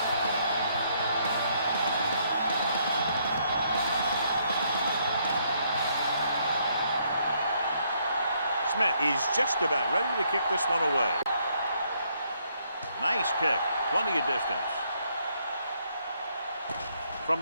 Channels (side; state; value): both; inverted; correlation -0.71